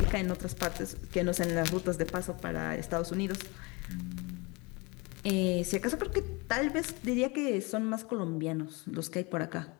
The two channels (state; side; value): quieter; right; 27.1 dB